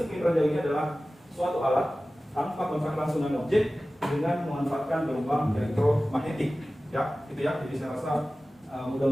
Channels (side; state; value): both; normal; correlation 0.96